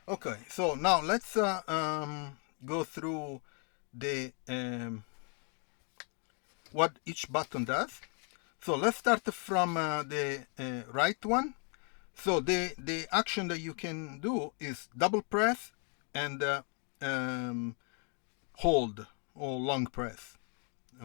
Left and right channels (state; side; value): quieter; right; 39.6 dB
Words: Okay, so now let's go through the what each button does. So let's start from the right one. So the action that you can do is double press and hold or long press.